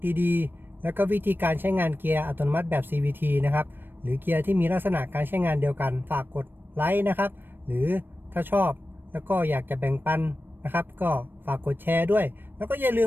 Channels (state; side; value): late; left; 0.096 ms